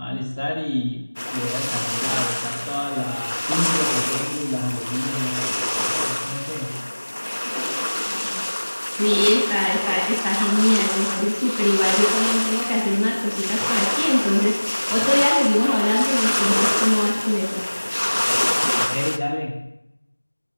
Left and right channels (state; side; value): inverted; both; correlation -1.00